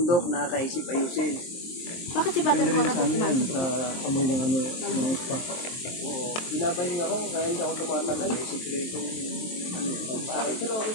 nakakaisip ayusin. Bakit si Batang Depende rin Cora sa ano yan, sa amoy ng ano, ng spa. Oo, binabahinga ako kaya hindi ako tumatagal. May sikretong ano, Ay, pero okay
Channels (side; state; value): right; late; 23 ms